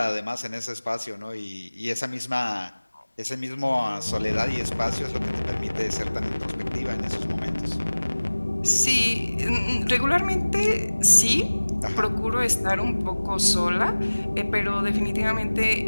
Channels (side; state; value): both; inverted; correlation -1.00